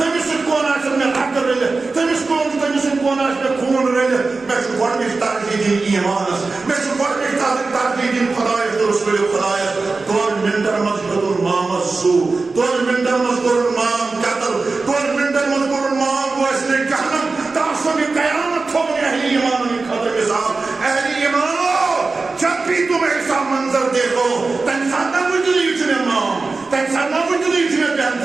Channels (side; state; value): left; quieter; 3.9 dB